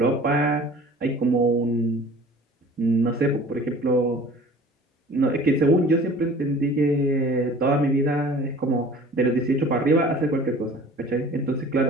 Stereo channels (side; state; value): both; normal; correlation 0.46